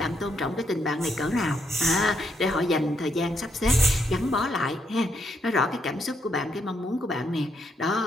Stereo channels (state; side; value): normal; both; correlation 0.77